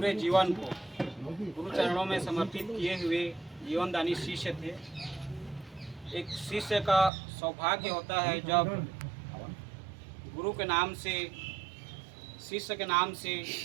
जीवन को गुरु चरणों में समर्पित किए हुए जीवनदानी शिष्य थे। एक शिष्य का सौभाग्य होता है जब गुरु के नाम से, शिष्य के नाम से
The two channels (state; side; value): drops out; left; at 7.1 s